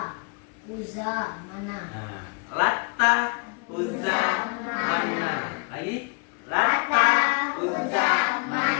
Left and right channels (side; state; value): right; quieter; 35.1 dB